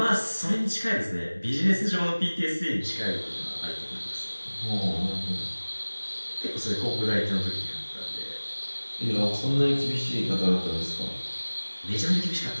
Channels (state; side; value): inverted; both; correlation -1.00